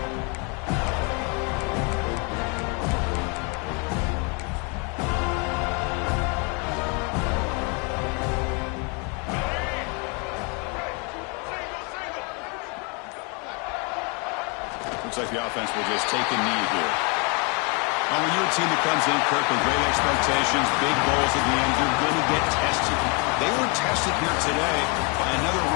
Looks like the offense will just take a knee here. Well, when you're a team that comes in, Kirk, with great expectations, big goals at the end, you're going to get tested. They were tested here today by another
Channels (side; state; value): right; quieter; 33.5 dB